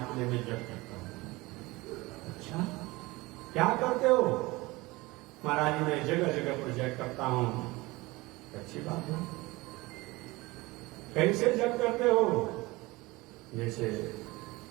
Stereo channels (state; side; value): quieter; left; 21.9 dB